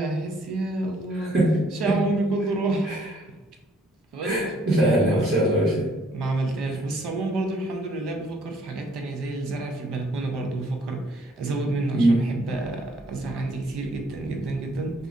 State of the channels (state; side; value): normal; both; correlation 0.64